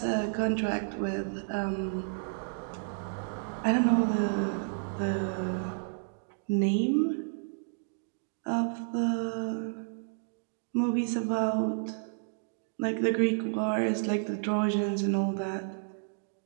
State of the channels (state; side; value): silent; left; digital silence